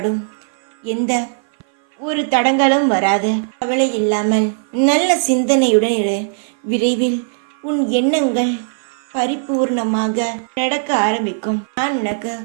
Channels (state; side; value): silent; left; 59 dB below the other